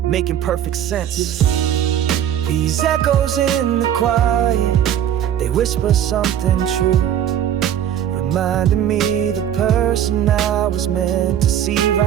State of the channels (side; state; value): left; quieter; 10.2 dB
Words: making perfect sense. These echoes in the quiet, they whisper something true, reminding me the person I was meant to see